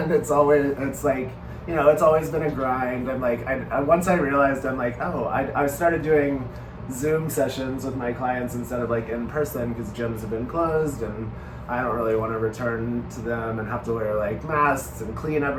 it's like, it's always been a grind. And like, once I realized, I'm like, I started doing Zoom sessions with my clients instead of like in person, because gyms have been closed, and I don't really want to return to them and have to wear like masks and clean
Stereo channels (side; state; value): both; identical; correlation 1.00